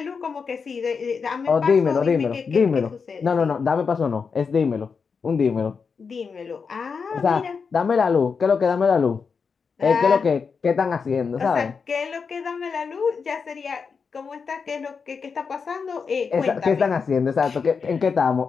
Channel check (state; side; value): quieter; right; 5.5 dB